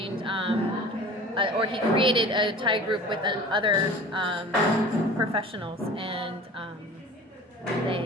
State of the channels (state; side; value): normal; both; correlation 0.41